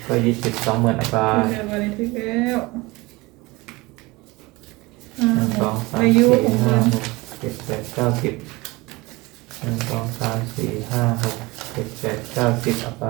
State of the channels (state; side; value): quieter; left; 22.7 dB